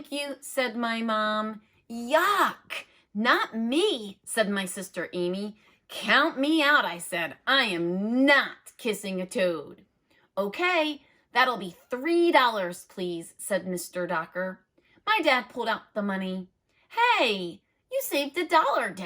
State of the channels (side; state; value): both; identical; correlation 1.00